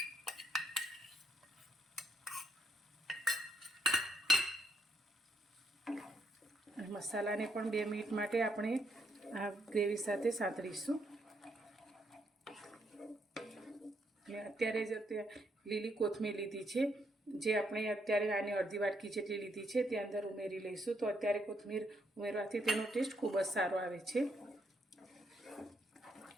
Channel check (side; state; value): both; normal; correlation 0.74